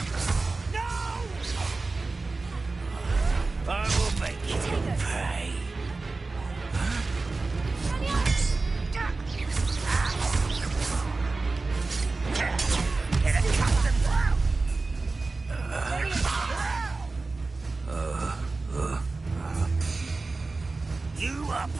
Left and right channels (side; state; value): left; quieter; 3.7 dB